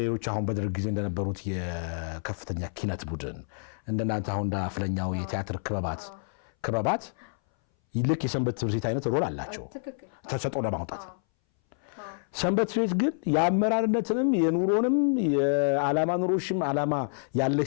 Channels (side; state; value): right; silent; 59 dB below the other